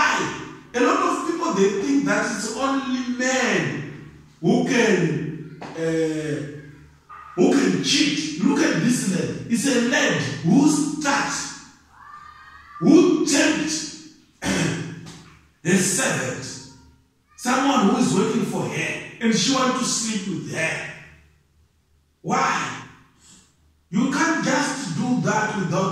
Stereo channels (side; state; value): both; identical; correlation 1.00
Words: A lot of people, they think that it's only men who can cheat. Look at this lad. It's a lad who tempts a servant, someone who is waiting for her, and she wants to sleep with her. Why? You can't just do that